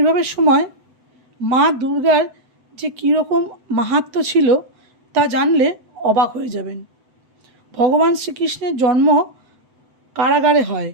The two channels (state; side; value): late; left; 7.9 ms